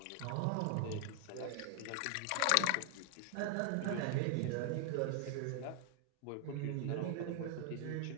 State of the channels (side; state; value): both; different; correlation 0.00